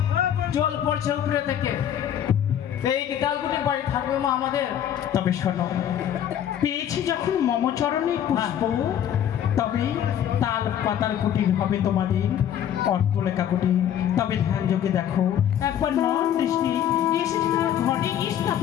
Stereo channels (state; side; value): quieter; right; 10.1 dB